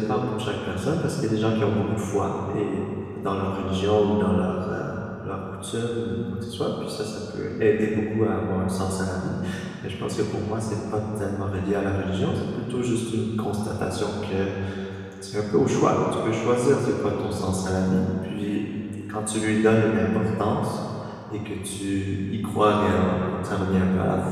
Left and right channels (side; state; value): both; identical; correlation 1.00